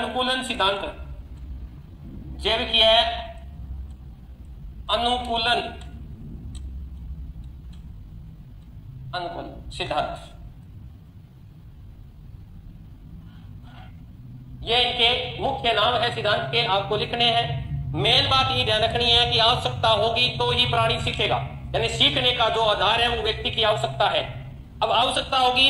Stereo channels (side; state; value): both; identical; correlation 1.00